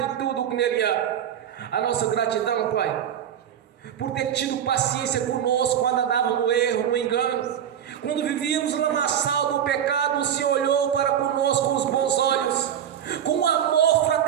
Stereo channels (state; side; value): quieter; left; 9.5 dB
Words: de tudo que nele há. A nossa gratidão, Pai, por ter tido paciência conosco quando andávamos no erro, no engano, quando vivíamos no lamaçal do pecado. O Senhor olhou para conosco com os bons olhos, com um amor